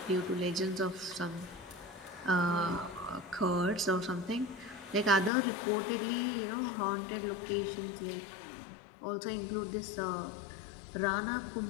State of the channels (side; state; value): right; drops out; at 5.3 s